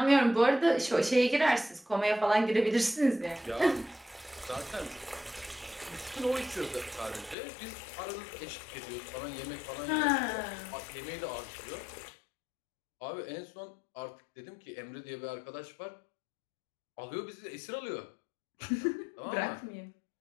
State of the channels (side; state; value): right; drops out; at 7.4 s